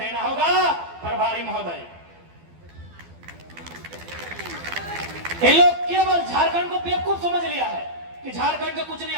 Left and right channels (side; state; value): left; late; 12 ms